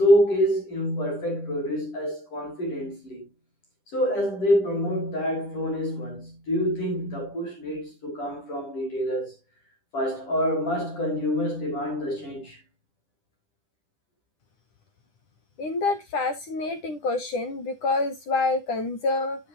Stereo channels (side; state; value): right; late; 10 ms